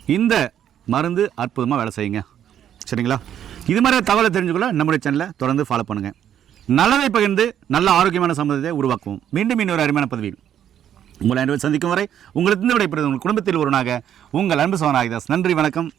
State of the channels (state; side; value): quieter; left; 10.0 dB